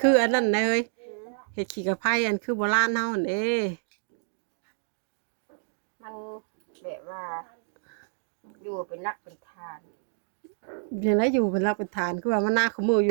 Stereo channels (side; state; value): left; silent; digital silence